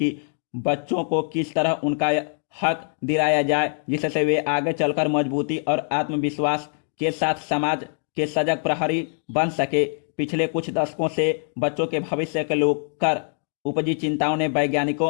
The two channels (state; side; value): silent; right; 56 dB below the other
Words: बच्चों को किस तरह उनका हक दिलाया जाए जिससे वे आगे चलकर मजबूती और आत्मविश्वास के साथ समाज के सजग प्रहरी बन सके। पिछले कुछ दशकों से बच्चों के भविष्य को लेकर उपजी चिंताओं ने वैज्ञानिकों